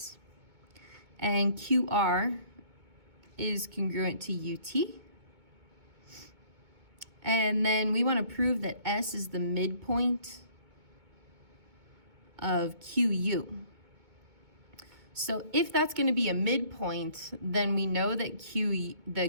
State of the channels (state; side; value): late; left; 2.2 ms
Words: And QR is congruent to UT. And then we want to prove that S is the midpoint of QU. So if that's going to be a midpoint, then we know that